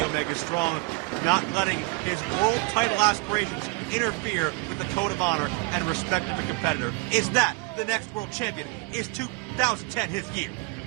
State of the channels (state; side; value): quieter; left; 26.8 dB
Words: Omega. Strong not letting his world title aspirations interfere with the code of honor and respect of the competitor. Is that the next world champion? Is 2010 his year?